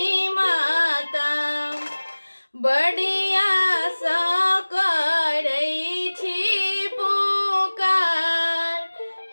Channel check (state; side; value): inverted; both; correlation -1.00